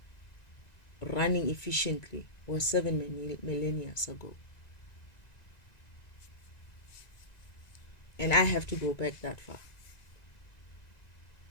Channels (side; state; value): right; late; 1.9 ms